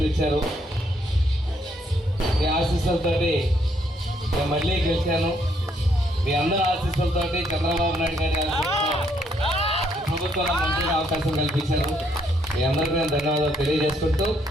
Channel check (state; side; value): normal; both; correlation 0.71